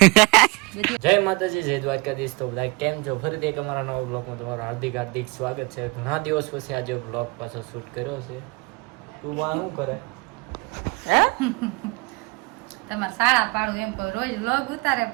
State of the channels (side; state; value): left; quieter; 27.1 dB